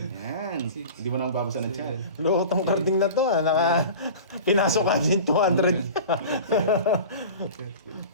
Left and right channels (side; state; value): both; inverted; correlation -0.36